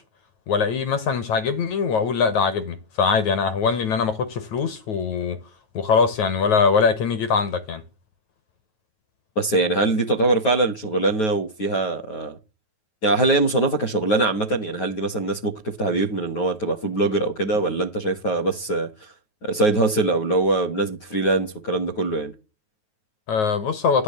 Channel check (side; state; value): right; late; 9.3 ms